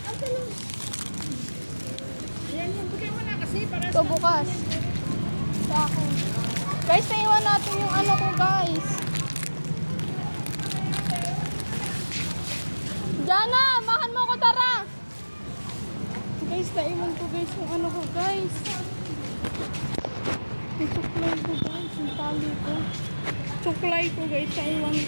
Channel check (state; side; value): inverted; both; correlation -1.00